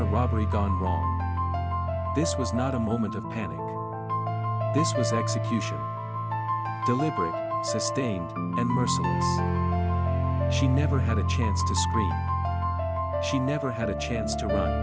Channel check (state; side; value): identical; both; correlation 1.00